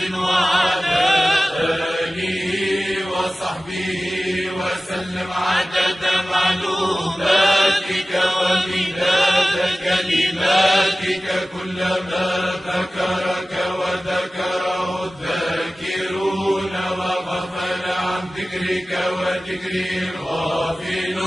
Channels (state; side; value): normal; both; correlation 0.97